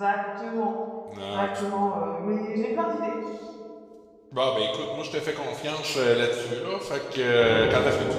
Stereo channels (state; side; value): identical; both; correlation 1.00